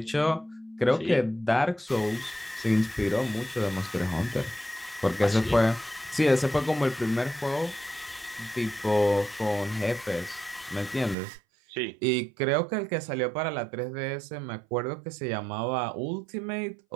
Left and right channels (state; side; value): drops out; left; at 11.2 s